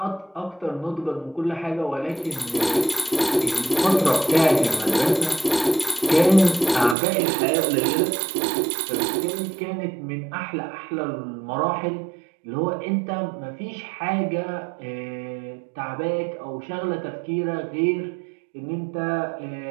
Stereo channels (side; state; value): left; drops out; at 7.0 s